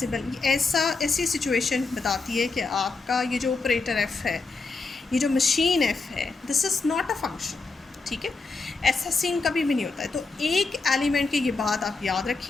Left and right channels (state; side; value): quieter; right; 4.0 dB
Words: ऐसी सिचुएशन बताती है कि आपका ये जो ऑपरेटर F है, ये जो मशीन F है, this is not a function, ठीक है। ऐसा सीन कभी भी नहीं होता है। तो एक एलिमेंट की ये बात आप याद